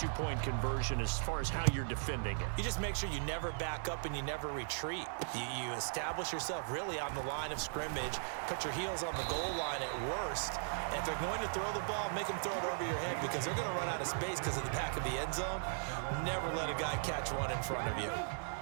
conversion as far as how you're defending it? You just make sure you never back up and you never retreat. You establish yourself really on the line of scrimmage, put your heels on the goal line at worst, and if they're going to throw the ball, make them throw it over your head because they're going to run out of space because of the back of the end zone. Never let a guy catch one in front of you.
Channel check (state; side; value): silent; left; 52 dB below the other